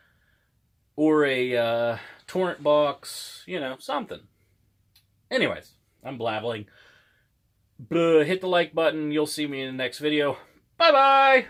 Or a torrent box, you know, something. Anyways, I'm blabbling. hit the like button. You'll see me in the next video.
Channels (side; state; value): both; identical; correlation 1.00